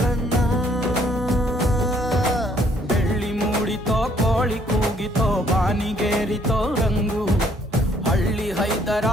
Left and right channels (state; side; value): normal; both; correlation 0.65